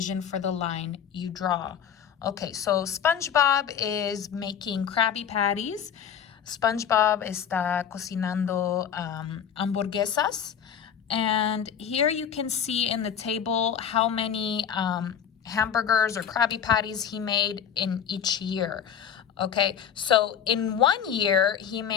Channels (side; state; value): right; quieter; 8.3 dB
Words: for the line you draw. Okay, so SpongeBob is making Krabby Patties. SpongeBob está cocinando hamburguesas. And here you can see in the table how many hamburgers or Krabby Patties he made in each year. Okay, so in 1 year, he